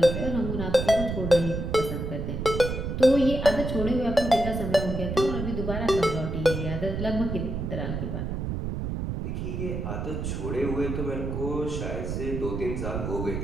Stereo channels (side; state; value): right; noise; rumble, 3 dB below the sound